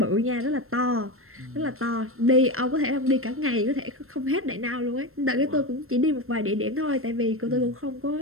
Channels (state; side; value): late; left; 0.62 ms